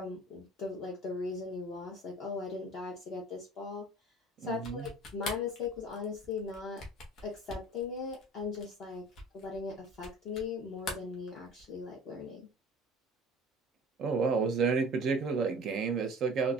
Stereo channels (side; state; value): both; normal; correlation 0.43